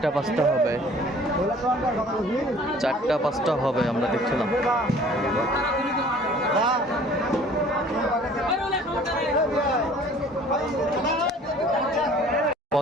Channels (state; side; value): normal; both; correlation 0.51